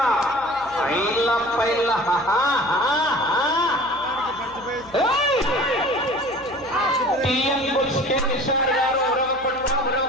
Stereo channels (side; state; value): left; noise; hum, 24 dB below the sound